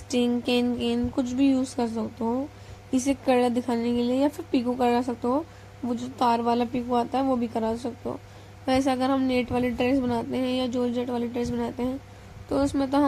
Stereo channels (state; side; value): identical; both; correlation 1.00